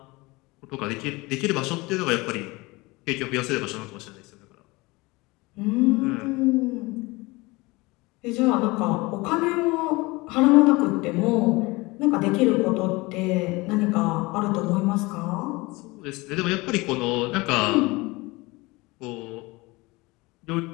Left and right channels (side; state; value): right; quieter; 23.1 dB